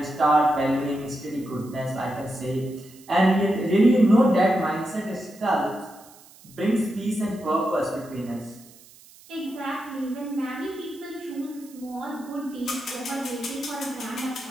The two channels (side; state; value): right; noise; hiss, 23 dB below the sound